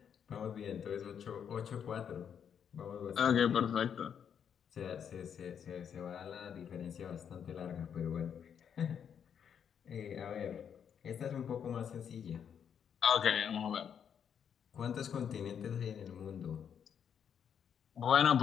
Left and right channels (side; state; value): right; quieter; 8.0 dB